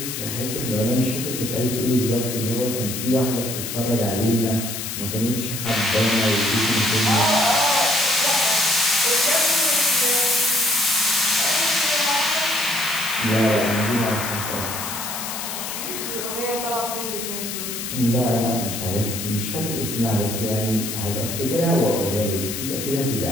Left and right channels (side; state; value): left; noise; hiss, 6 dB below the sound